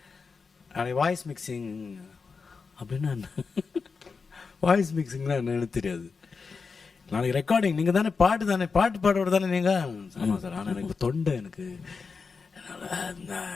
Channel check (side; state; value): right; quieter; 5.0 dB